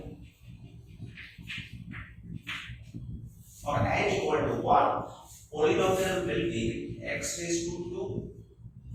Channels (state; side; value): identical; both; correlation 1.00